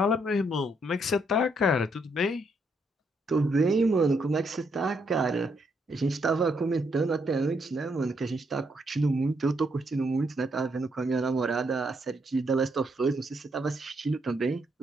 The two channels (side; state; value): both; normal; correlation 0.75